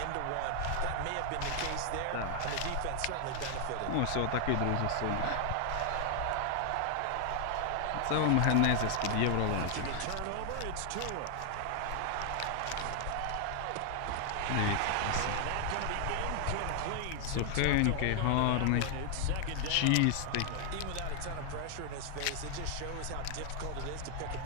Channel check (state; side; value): different; both; correlation 0.00